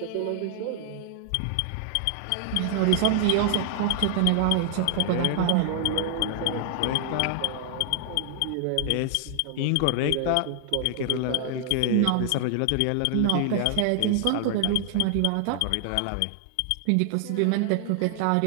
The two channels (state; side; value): different; both; correlation 0.00